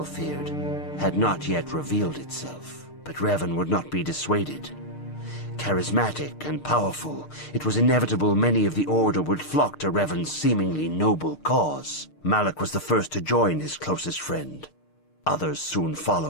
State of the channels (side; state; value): right; late; 6.6 ms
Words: feared, had not yet revealed itself. But Revan would not be dissuaded. Charismatic and powerful, it was inevitable many of the Order would flock to Revan's seemingly noble cause. Malak was the first to join his closest friend. Others soon